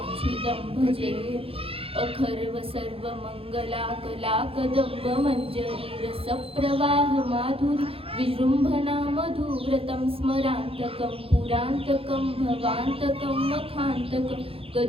भजे अखर्व सर्वमंगला कला कदंब मंजरी रसप्रवाह माधुरी विजृंभणा मधुव्रतं स्मरान्तकं पुरान्तकं भवान्तकं मखान्तकं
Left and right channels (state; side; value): late; left; 0.27 ms